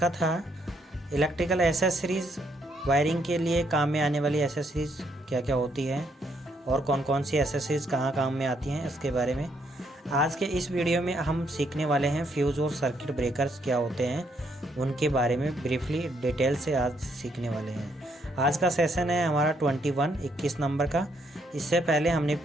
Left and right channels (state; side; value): normal; both; correlation 0.73